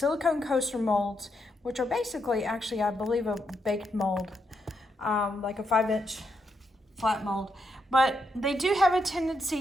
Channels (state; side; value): normal; both; correlation 0.80